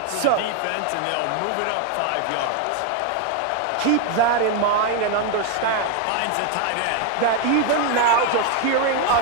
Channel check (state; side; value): different; both; correlation 0.01